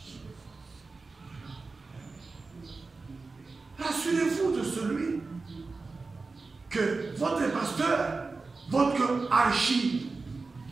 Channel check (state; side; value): quieter; left; 4.0 dB